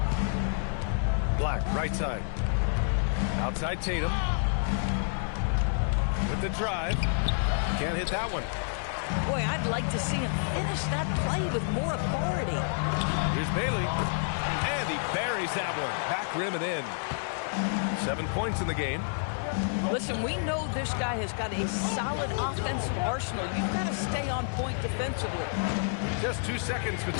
Black, right side. Outside Tatum. With the drive. Can't hit that one. Boy, I'd like to see him finish that play with more authority. Here's Bailey. And he buries that one. Back rim and in. 7 points in the game. Listen, we know this guy has got a solid offensive arsenal. You've got to stay on point defensively. Just 2 seconds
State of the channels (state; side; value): silent; right; digital silence